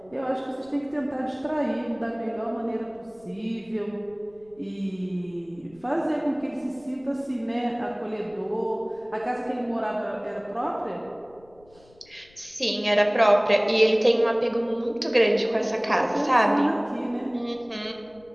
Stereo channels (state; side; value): noise; left; rumble, 29 dB below the sound